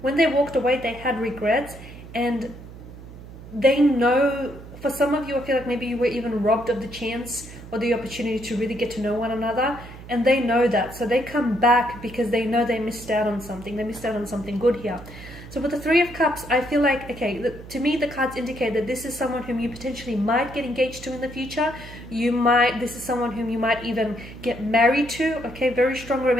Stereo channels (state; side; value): noise; right; hum, 15 dB below the sound